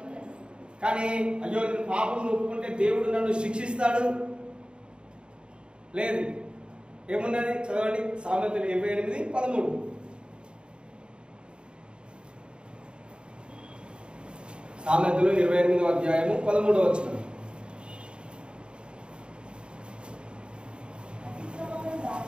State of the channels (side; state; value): left; late; 0.052 ms